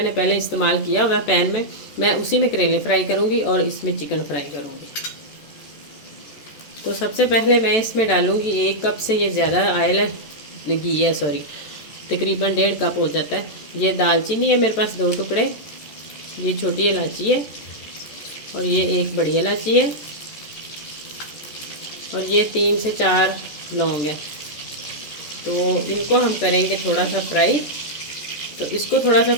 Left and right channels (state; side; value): late; right; 14 ms